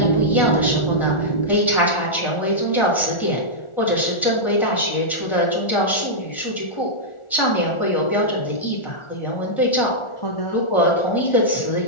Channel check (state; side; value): late; right; 1.4 ms